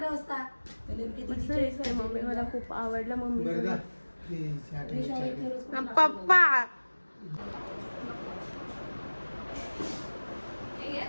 वाजता. मस्त दिसते मम्मी. मला खूप आवडलं मम्मी. पप्पा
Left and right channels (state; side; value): inverted; both; correlation -1.00